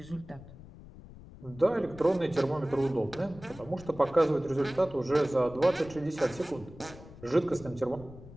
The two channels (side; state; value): left; noise; rumble, 17 dB below the sound